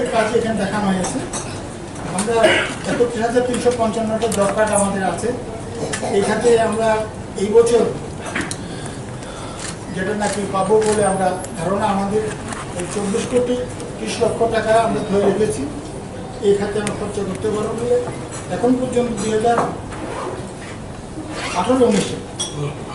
কাজে এখানে দেখানো হয়েছে। আমরা 31,355টা জব কার্ড আমাদের আছে। এই খাতে আমরা এই বছর যেটা নাকি পাবো বলে আমরা ধারণা, আমাদের 24,30,00,000 টাকা আমরা ধরে রেখেছি এই খাতে আমরা খরচা করতে পারবো বলে। এখন পর্যন্ত 2018-19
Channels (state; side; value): identical; both; correlation 1.00